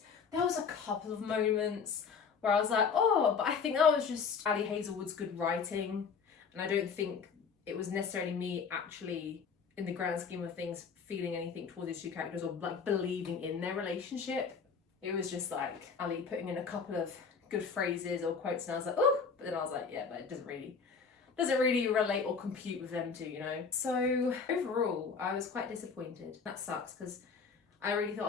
There was a couple of moments where I was like, oh, but I think that was just Ali Hazelwood's good writing. And I don't think it was necessarily me actually, in the grand scheme of things, feeling anything towards these two characters or like believing in their relationship. It was just like Ali putting in a couple of good phrases or quotes, and I was like, oh, but then I was like, yeah, but it doesn't really relate or compute with them two, you know? So overall, I was quite disappointed. That sucks, because I really thought I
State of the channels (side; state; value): right; quieter; 5.6 dB